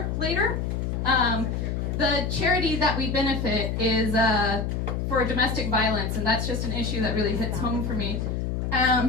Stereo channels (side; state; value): left; noise; hum, 1 dB below the sound